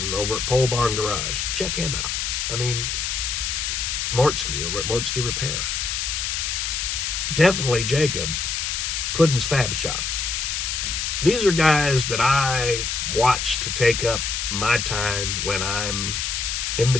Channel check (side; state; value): left; noise; hiss, 1 dB below the sound